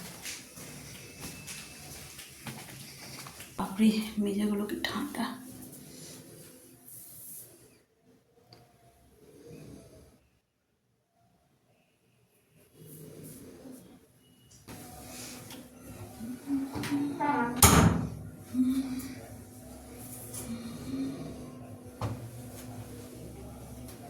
বাপরে মেজাগুলো কি ঠান্ডা।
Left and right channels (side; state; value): both; identical; correlation 1.00